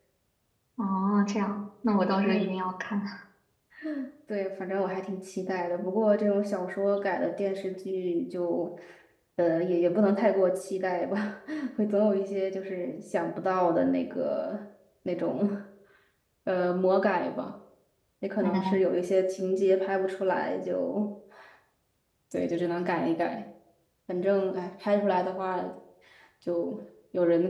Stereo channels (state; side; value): identical; both; correlation 1.00